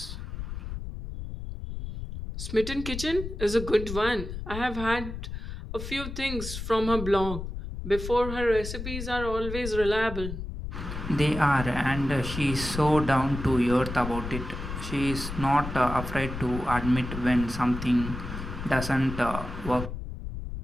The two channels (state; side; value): noise; left; rumble, 7 dB below the sound